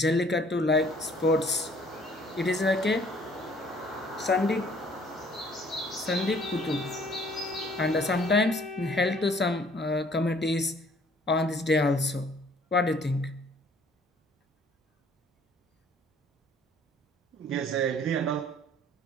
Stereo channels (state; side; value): normal; both; correlation 0.58